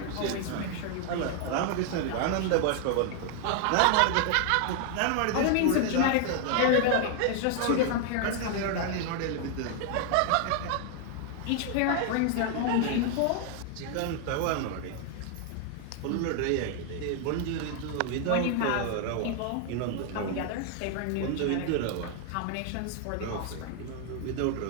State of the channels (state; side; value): different; both; correlation 0.00